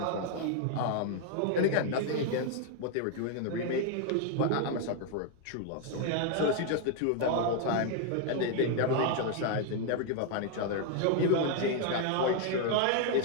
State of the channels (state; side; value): different; both; correlation 0.00